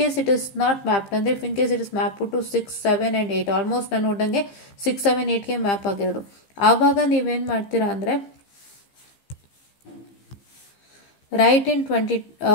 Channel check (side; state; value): right; late; 15 ms